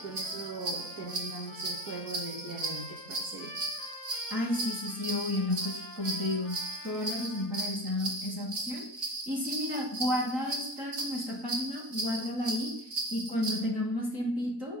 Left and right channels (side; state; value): left; late; 4.2 ms